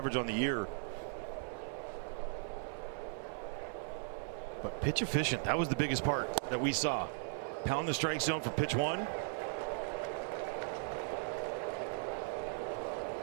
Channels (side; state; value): left; silent; 53 dB below the other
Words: on the year. But pitch efficient, that was the biggest part that we saw. Pound the strike zone for pitch 1.